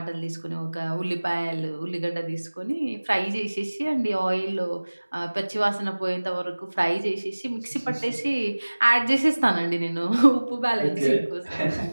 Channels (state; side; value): inverted; both; correlation -1.00